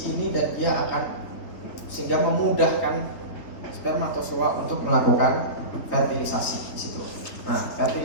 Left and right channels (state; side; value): late; right; 3.8 ms